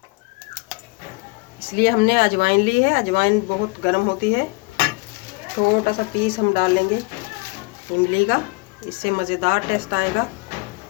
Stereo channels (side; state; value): right; quieter; 26.0 dB